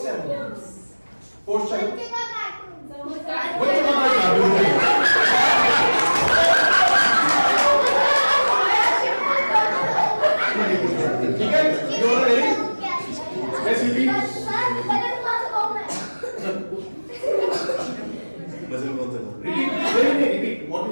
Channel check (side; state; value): both; inverted; correlation -1.00